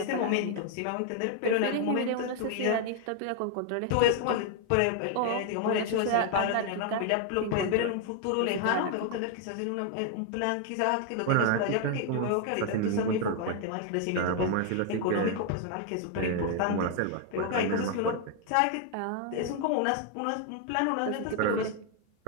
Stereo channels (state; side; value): different; both; correlation 0.00